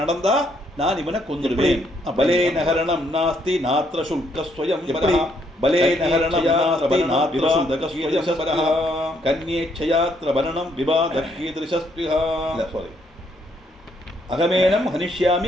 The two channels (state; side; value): normal; both; correlation 0.71